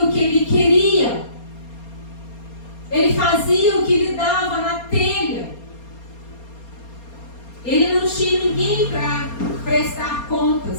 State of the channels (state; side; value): late; right; 4.3 ms